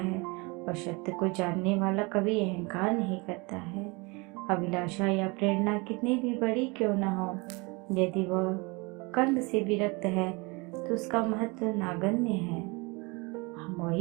और सत्य को जानने वाला कभी अहंकार नहीं करता है। अभिलाषा या प्रेरणा कितनी भी बड़ी क्यों न हो, यदि वह कर्म से विरक्त है तो उसका महत्व नगण्य है। हम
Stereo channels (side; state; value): left; quieter; 27.5 dB